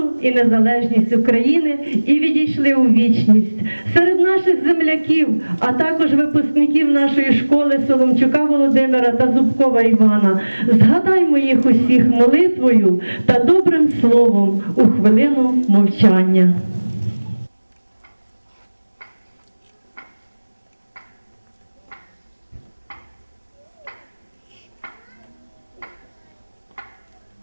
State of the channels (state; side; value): inverted; both; correlation -1.00